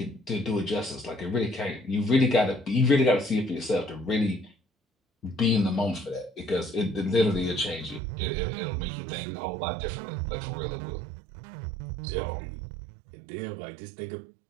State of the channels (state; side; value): drops out; left; at 8.0 s